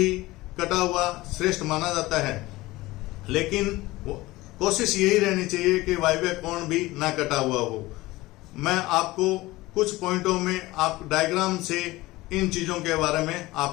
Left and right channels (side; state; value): right; quieter; 19.4 dB